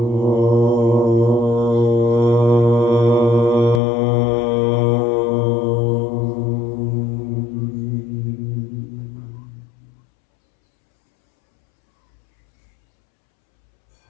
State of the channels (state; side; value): drops out; right; at 3.8 s